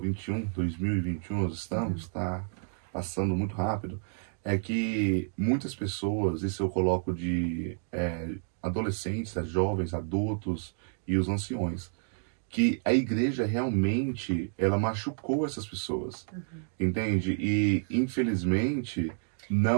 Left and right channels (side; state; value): left; silent; digital silence